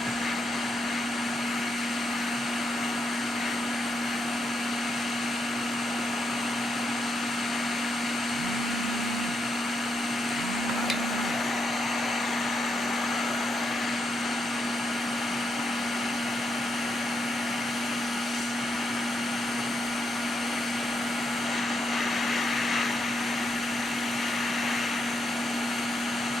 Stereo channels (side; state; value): both; normal; correlation 0.81